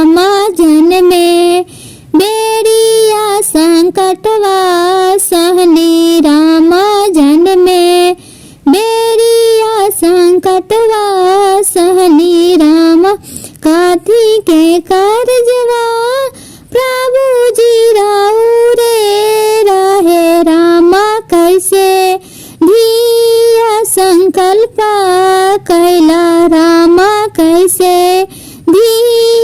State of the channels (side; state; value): both; identical; correlation 1.00